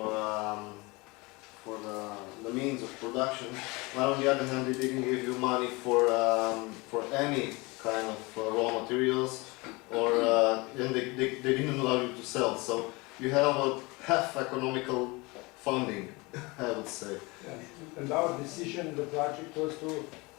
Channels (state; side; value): quieter; right; 25.1 dB